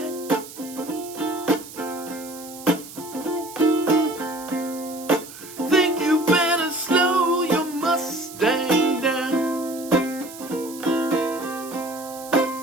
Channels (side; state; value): right; noise; hiss, 15 dB below the sound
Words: Think you better slow your Mustang down.